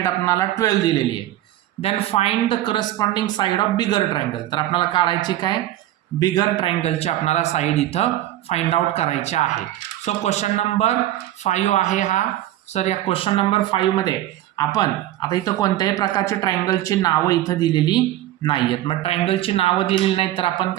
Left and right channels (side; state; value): left; quieter; 13.8 dB